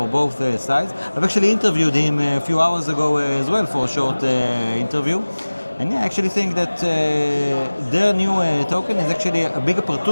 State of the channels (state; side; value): inverted; both; correlation -1.00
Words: both sides. I've actually interviewed him a few hours ago as well for a short interview. And I actually think that their new token is actually a big